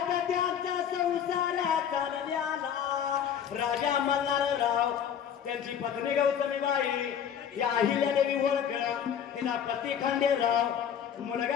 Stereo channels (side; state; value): right; quieter; 8.6 dB